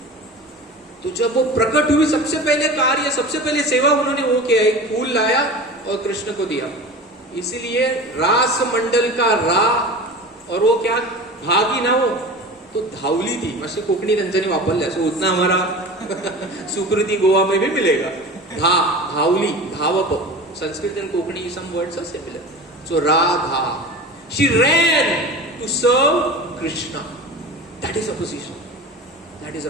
तो जब वो प्रकट हुई, सबसे पहले कार्य, सबसे पहले सेवा उन्होंने वो किया, एक फूल लाया और कृष्ण को दिया। इसीलिए रास मंडल का रा, और वो क्या भागी ना, वो तो धावली थी। मस्त कोकणी त्यांच्यानी वापरल्या, सो उतना हमारा सुकृति गोवा में भी मिलेगा। धावली, धावप, Sanskrit and Konkani some words are similar. So Radha, she ran to serve Krishna, that is a position, that is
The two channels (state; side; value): normal; both; correlation 0.34